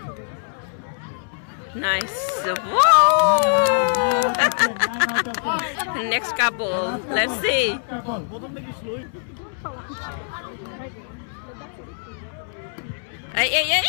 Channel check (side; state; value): right; silent; 63 dB below the other